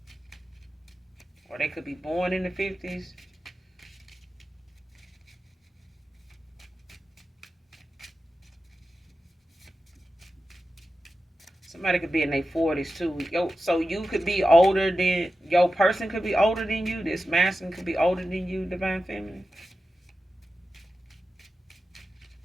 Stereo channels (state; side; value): normal; both; correlation 0.92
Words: or they could be born in the 50s. Somebody could be in their 40s too. So you could be older than, your person could be older than you. This masculine could be older than you, divine feminine.